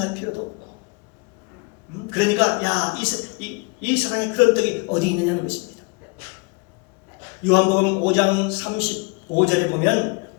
필요도 없고 그러니까 이 세상에 그런 떡이 어디 있느냐는 것입니다. 요한복음 5장 35절에 보면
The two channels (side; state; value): right; quieter; 30.3 dB